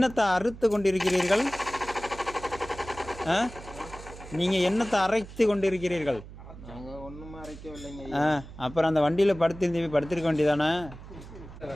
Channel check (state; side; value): noise; right; hum, 15 dB below the sound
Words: அறுத்து கொண்டிருக்கிறீர்கள்? நீங்கள் என்னத்தை அரைத்து கொண்டிருக்கிறீர்கள்? அப்புறம் அந்த வண்டியில் படுத்திருக்க வேண்டியதானே?